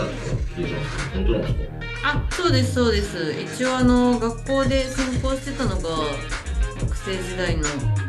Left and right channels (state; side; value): identical; both; correlation 1.00